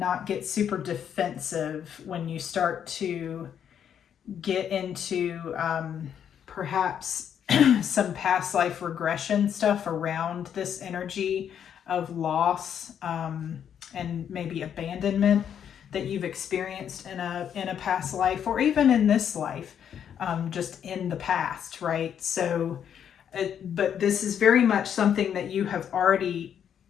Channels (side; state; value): right; quieter; 8.7 dB